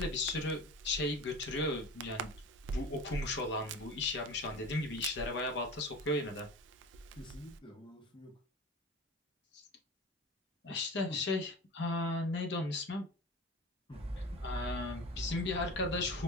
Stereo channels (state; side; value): normal; both; correlation 0.34